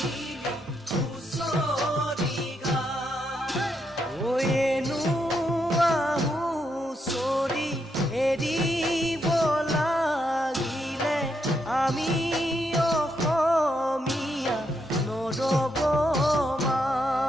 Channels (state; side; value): normal; both; correlation 0.79